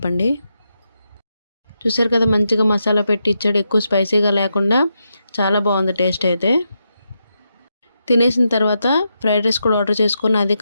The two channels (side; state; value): both; inverted; correlation -0.85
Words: చూసారు కదా, మంచిగా మసాలా పెట్టి ఇచ్చాడు. ఎక్కువ స్పైసీగా లేకుండా చాలా బాగుంది టేస్ట్ అయితే. తినేసిన తర్వాత ఫ్రైడ్ రైస్ కూడా ఆర్డర్ చేసుకుని అది